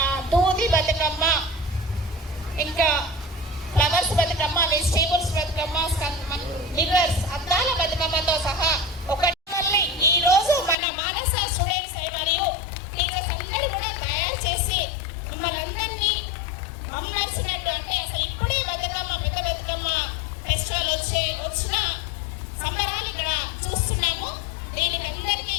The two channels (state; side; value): drops out; right; at 10.8 s